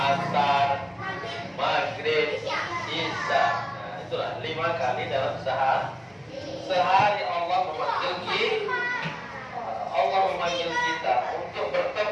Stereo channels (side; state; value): both; identical; correlation 1.00